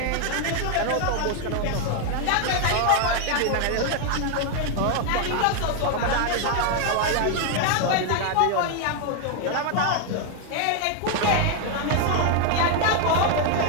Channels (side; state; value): both; different; correlation 0.01